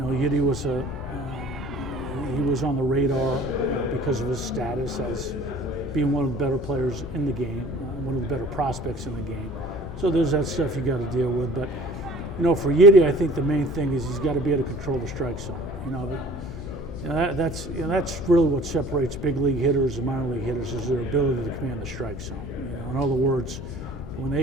Yidi was he was on the radar because of his status as being one of the better players in the game, one of the better prospects in the game. So there's that stuff you got to deal with, but for Yidi, I think the main thing is he's got to be able to control the strike zone. That's really what separates big league hitters and minor league hitters is their ability to command the strike zone. In other words, when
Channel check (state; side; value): noise; left; hum, 11 dB below the sound